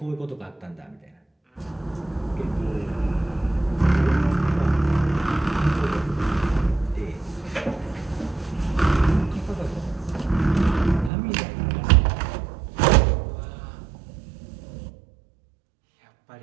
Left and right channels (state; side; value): drops out; left; at 11.1 s